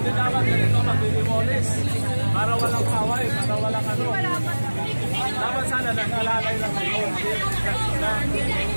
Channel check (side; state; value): both; inverted; correlation -1.00